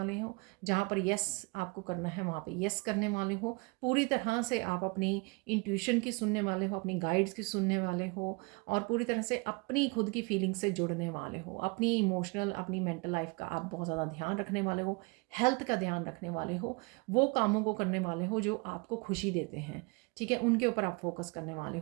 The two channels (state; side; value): quieter; left; 29.4 dB